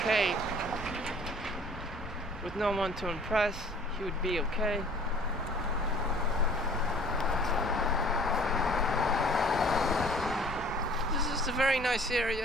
With no one to impress, he would be okay. This is a very nice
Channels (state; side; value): normal; both; correlation 0.51